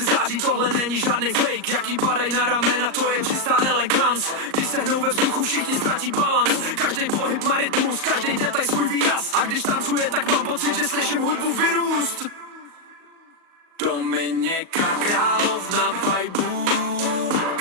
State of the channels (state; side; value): late; left; 38 ms